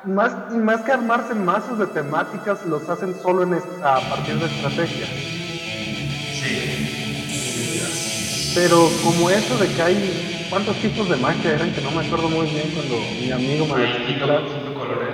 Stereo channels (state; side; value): identical; both; correlation 1.00